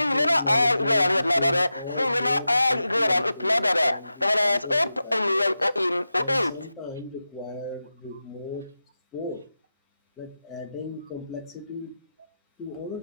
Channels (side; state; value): both; inverted; correlation -0.92